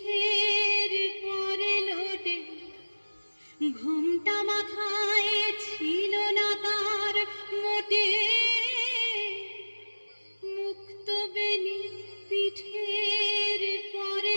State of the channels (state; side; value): inverted; both; correlation -1.00